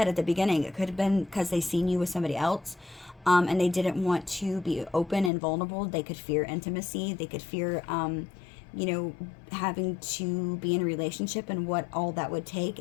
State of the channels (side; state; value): right; drops out; at 5.3 s